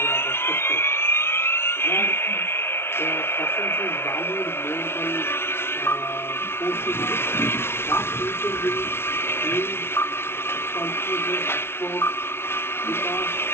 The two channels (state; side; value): late; right; 0.12 ms